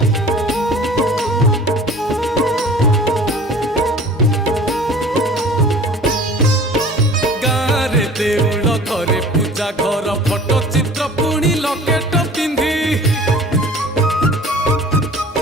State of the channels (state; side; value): normal; both; correlation 0.45